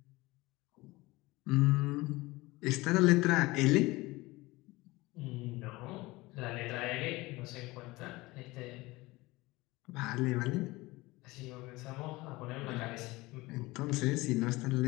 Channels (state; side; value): quieter; right; 21.1 dB